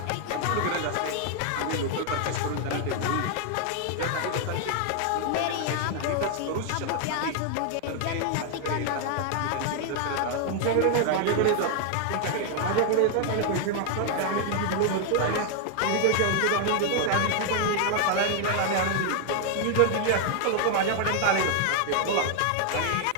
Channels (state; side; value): different; both; correlation 0.00